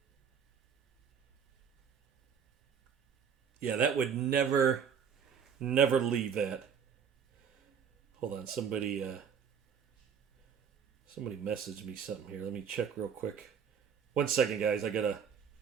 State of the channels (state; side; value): quieter; left; 7.2 dB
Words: Yeah, that would never leave that. Hold on, somebody messaged me something here. Let me check real quick. 1 second, guys. I gotta